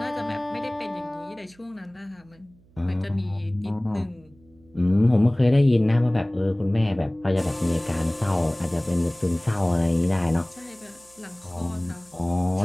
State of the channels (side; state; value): right; noise; hum, 29 dB below the sound